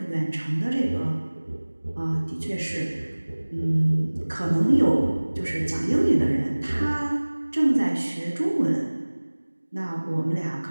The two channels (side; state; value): both; inverted; correlation -1.00